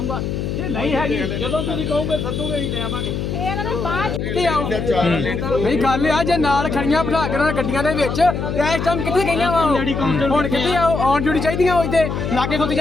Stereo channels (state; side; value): noise; left; hum, 3 dB below the sound